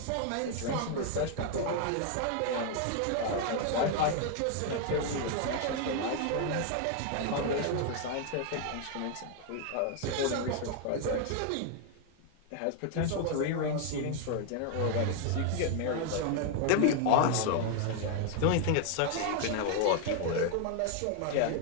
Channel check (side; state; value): both; different; correlation 0.00